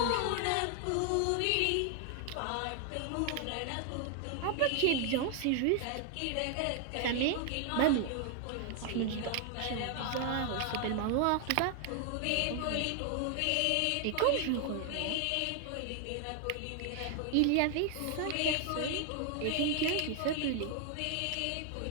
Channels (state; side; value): different; both; correlation 0.00